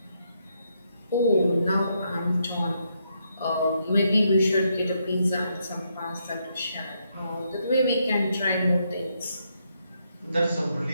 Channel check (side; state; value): both; inverted; correlation -0.78